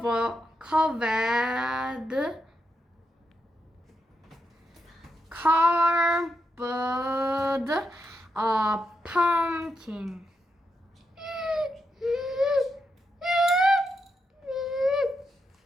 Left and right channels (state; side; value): normal; both; correlation 0.84